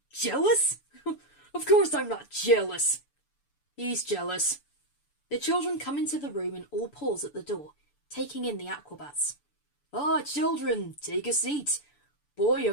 Jealous? Of course I'm not jealous. He's jealous. The children come into the room and all pause at the door, taking in the Aquabats. Ah, children, take a seat. Boy,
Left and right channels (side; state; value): right; late; 6.9 ms